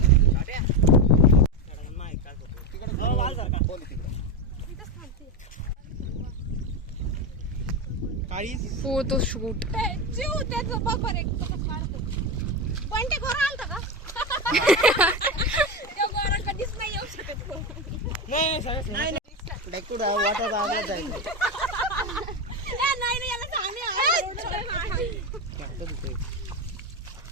Photo shoot. जीव त्याचं बघ एक पण ते घोर आलता का? त्या घोरा कधीच नाही येऊ शकत. नाही वाटत आवाज आहे. नाही याला सांगणे.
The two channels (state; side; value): normal; both; correlation 0.15